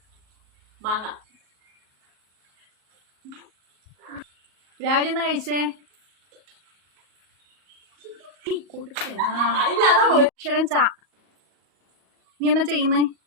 മാങ്ങ. രാവിലെ എന്നാ കഴിച്ചേ? അക്ഷരം ചാ. നീ എന്നാ ചെയ്യുന്നേ?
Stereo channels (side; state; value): left; late; 38 ms